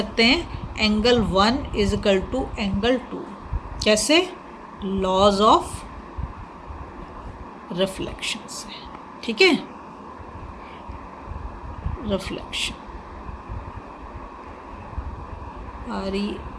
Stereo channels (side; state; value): both; identical; correlation 1.00